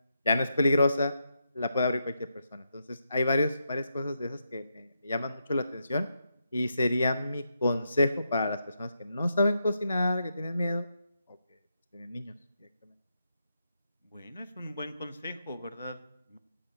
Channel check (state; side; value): inverted; both; correlation -0.82